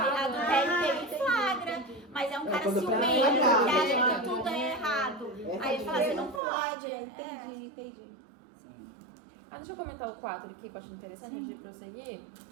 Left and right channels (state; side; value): drops out; left; at 6.4 s